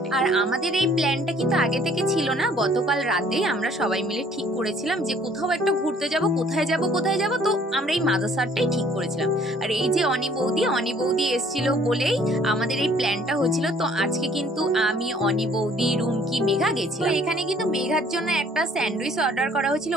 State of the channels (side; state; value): both; normal; correlation 0.58